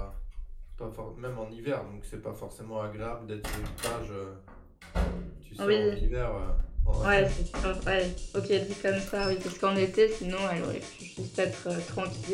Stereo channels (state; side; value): identical; both; correlation 1.00